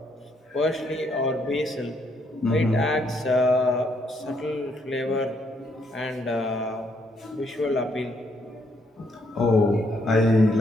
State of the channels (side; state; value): both; normal; correlation 0.72